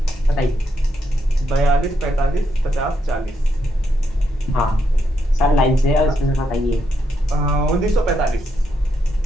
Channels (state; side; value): normal; both; correlation 0.79